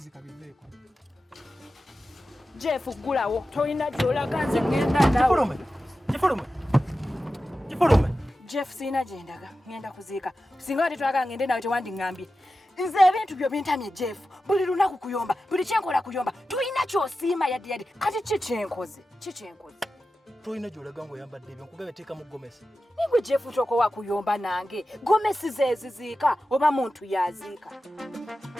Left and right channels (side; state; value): both; normal; correlation 0.93